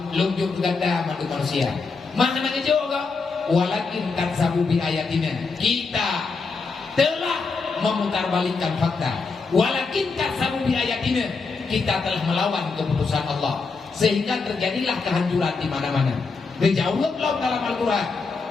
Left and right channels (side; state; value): right; quieter; 4.4 dB